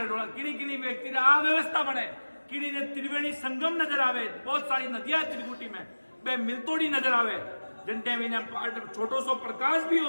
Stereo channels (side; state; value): both; inverted; correlation -1.00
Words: डोला किनी किनी व्यक्ति आ व्यवस्था बने, किनी ने त्रिवेणी संगम नजर आवे, बहुत सारी नदियां त्रिकुटी में बे मिलतोड़ी नजर आवे। जिन टाइम इन्हें छोटो सो प्रकाश भी